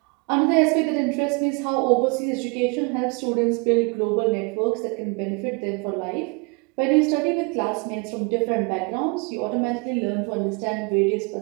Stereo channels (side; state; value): left; quieter; 32.3 dB